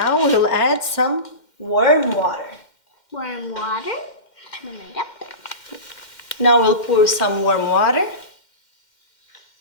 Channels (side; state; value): right; late; 2.1 ms